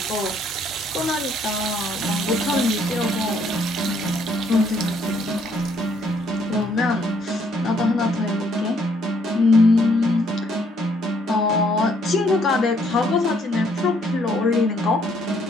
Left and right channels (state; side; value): normal; both; correlation 0.67